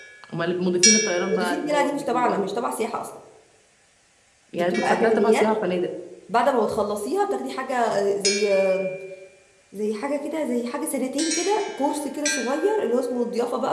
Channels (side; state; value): both; identical; correlation 1.00